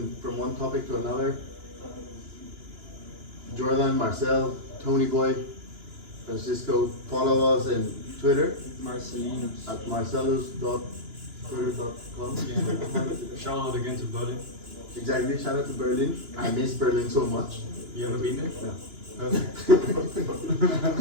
from one topic to another. Jordan, Marcel, Tony Boy, Francisco, follow us on Twitter Marcelinus. at marcellus.twitter.com. Yeah. Shout out again to Berlin. Exactly, shout out to Berlin. I miss Berlin so much. You ever been there? No. Okay.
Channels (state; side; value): late; left; 2.9 ms